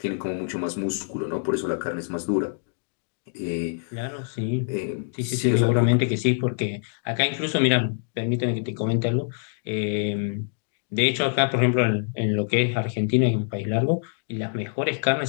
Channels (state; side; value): silent; right; digital silence